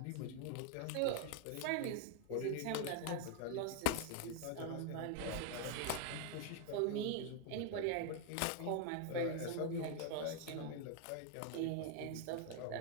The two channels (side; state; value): both; different; correlation 0.00